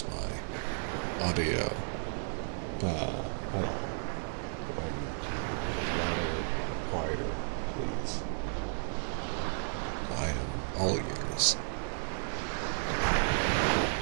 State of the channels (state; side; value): silent; left; digital silence